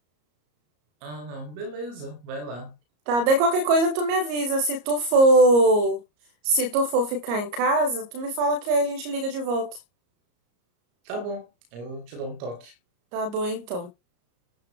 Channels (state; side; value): late; left; 34 ms